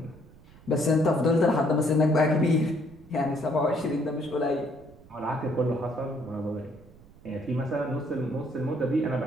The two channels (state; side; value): noise; right; rumble, 23 dB below the sound